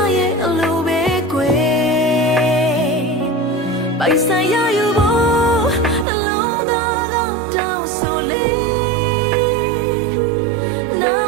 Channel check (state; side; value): drops out; left; at 6.1 s